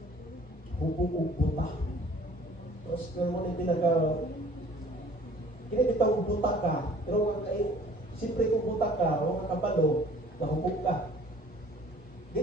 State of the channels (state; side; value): normal; both; correlation 0.52